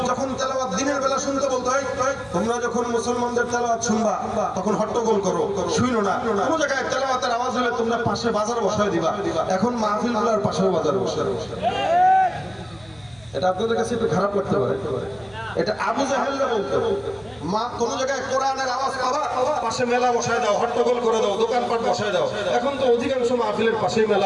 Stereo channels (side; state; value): right; noise; hum, 26 dB below the sound